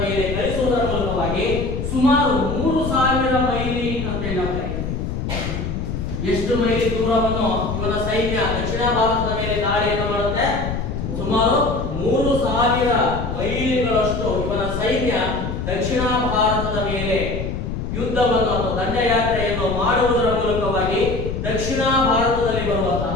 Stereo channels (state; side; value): noise; left; rumble, 4 dB below the sound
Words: ಮೇಲೆ ಕಳಿಸುವುದರ ಮೂಲಕವಾಗಿ ಸುಮಾರು 3000 ಮೈಲಿ ಅಂತ ಹೇಳಿ. ಎಷ್ಟು ಮೈಲಿ ದೂರವನ್ನು ಇವನ ಸೈನ್ಯ ದಕ್ಷಿಣ ಭಾರತದ ಮೇಲೆ ದಾಳಿಯನ್ನು ಮಾಡುತ್ತೆ? ಸುಮಾರು 3000 ಮೈಲಿಗಳಷ್ಟು ಇವನ ಸೈನ್ಯ ದಕ್ಷಿಣ ಭಾರತದ ಮೇಲೆ ಯುದ್ಧವನ್ನು ಅಥವಾ ದಂಡಯಾತ್ರೆಯನ್ನು ಮಾಡುವುದರ ಮೂಲಕವಾಗಿ ದಕ್ಷಿಣ ಭಾರತದಲ್ಲಿ